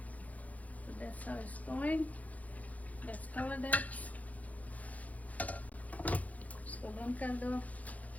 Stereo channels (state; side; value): late; right; 0.072 ms